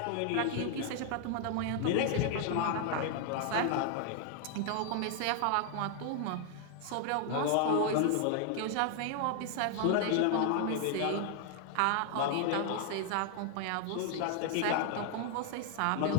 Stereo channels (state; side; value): different; both; correlation 0.00